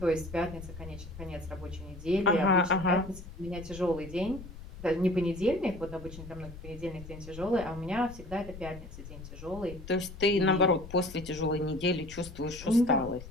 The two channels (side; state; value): left; noise; rumble, 14 dB below the sound